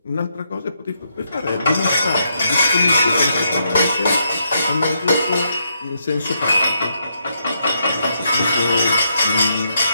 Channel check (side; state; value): both; inverted; correlation -0.78